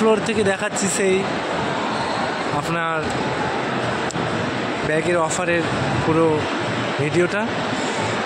থেকে দেখাচ্ছি সেই আপনার ব্যাগের অফারের পুরো ভিডিওটা।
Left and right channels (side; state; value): both; identical; correlation 1.00